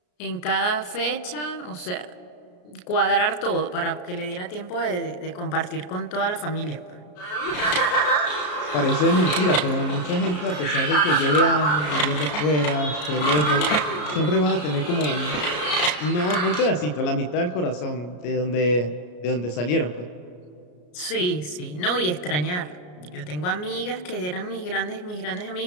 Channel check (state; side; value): late; right; 33 ms